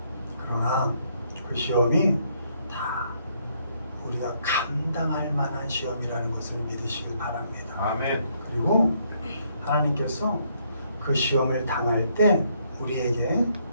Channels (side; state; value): both; inverted; correlation -0.71